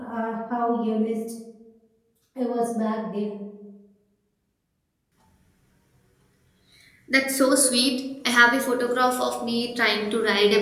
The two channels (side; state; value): both; identical; correlation 1.00